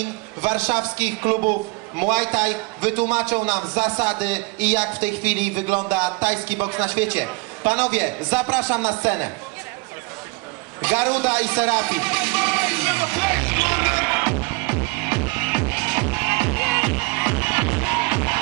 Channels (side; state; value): left; quieter; 27.8 dB